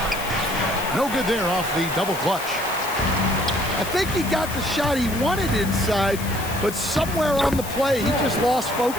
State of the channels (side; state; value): left; noise; hiss, 11 dB below the sound